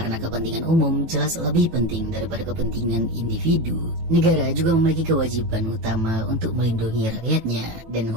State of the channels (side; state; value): left; late; 18 ms